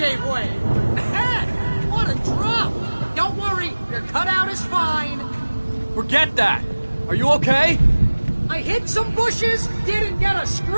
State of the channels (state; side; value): inverted; both; correlation -1.00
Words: way! Man, what a drop! Don't worry, your cutout is fine. Forget that! Are you okay? I hit some bushes, didn't get a